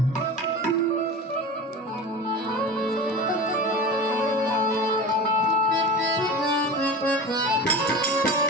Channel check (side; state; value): both; normal; correlation 0.32